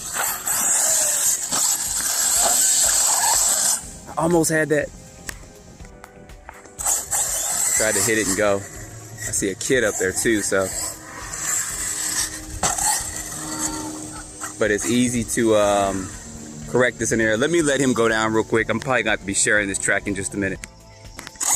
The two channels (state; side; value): identical; both; correlation 1.00